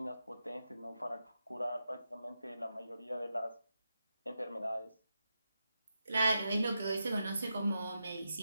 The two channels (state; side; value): inverted; both; correlation -0.88